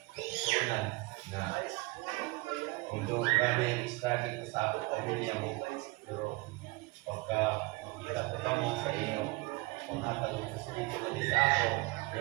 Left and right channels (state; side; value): quieter; left; 23.2 dB